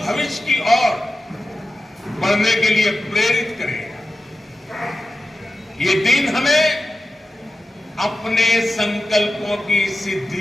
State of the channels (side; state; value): both; normal; correlation 0.93